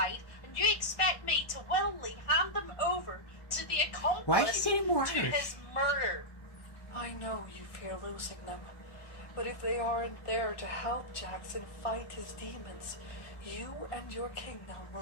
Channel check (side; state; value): right; late; 1.4 ms